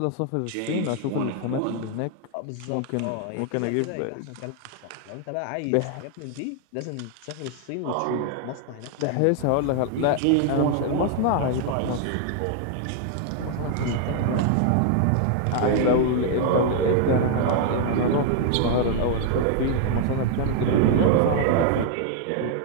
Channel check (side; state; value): both; different; correlation 0.00